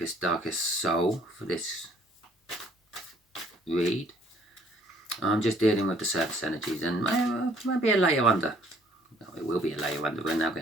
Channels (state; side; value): normal; both; correlation 0.60